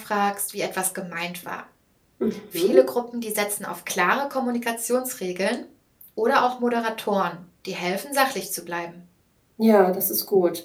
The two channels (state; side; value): identical; both; correlation 1.00